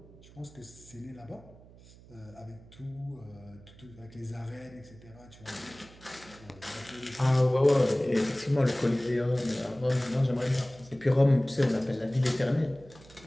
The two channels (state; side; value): noise; right; hum, 22 dB below the sound